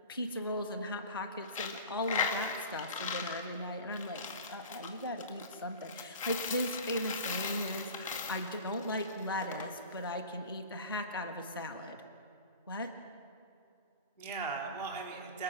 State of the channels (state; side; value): inverted; both; correlation -0.36